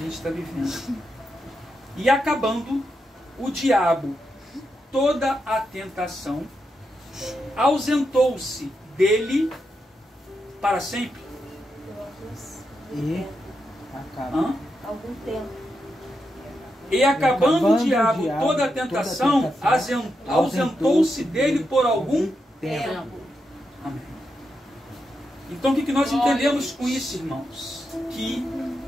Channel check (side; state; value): both; normal; correlation 0.85